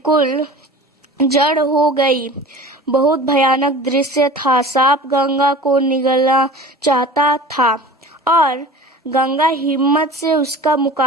जड़ हो गई। बहुत भयानक दृश्य था। सांप गंगा को निगलना चाहता था और गंगा हिम्मत से उसका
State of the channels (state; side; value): normal; both; correlation 0.39